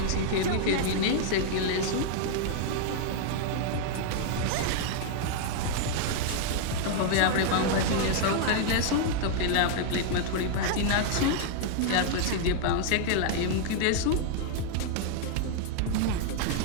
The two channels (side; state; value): both; different; correlation -0.01